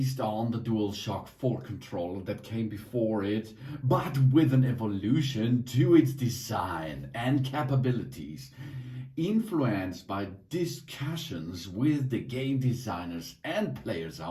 on the DualShock 4 controller that came before it, but with an evolution to its design and capabilities, influenced by discussions with the game designers and players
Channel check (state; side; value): identical; both; correlation 1.00